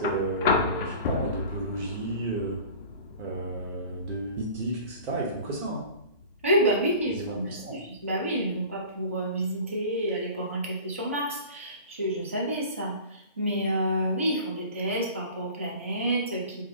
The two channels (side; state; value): both; inverted; correlation -0.41